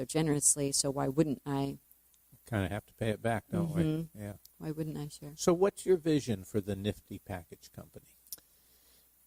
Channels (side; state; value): both; identical; correlation 1.00